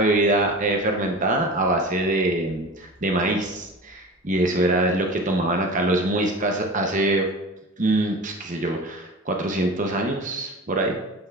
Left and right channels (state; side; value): normal; both; correlation 0.34